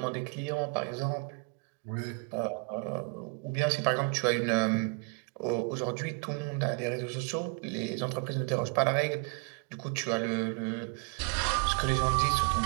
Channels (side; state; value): left; quieter; 34.1 dB